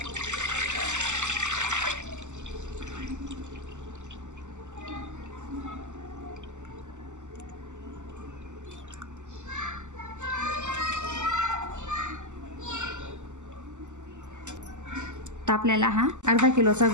तर आपल्याला हा अर्धा किलोचा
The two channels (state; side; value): late; left; 0.84 ms